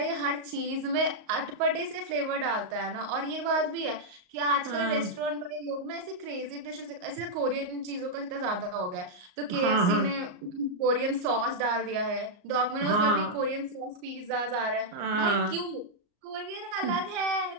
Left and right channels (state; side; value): late; left; 34 ms